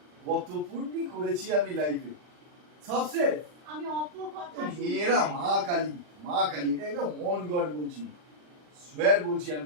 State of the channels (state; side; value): late; left; 40 ms